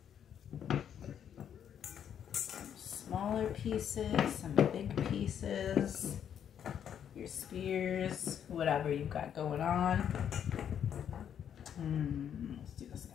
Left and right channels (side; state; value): right; quieter; 8.9 dB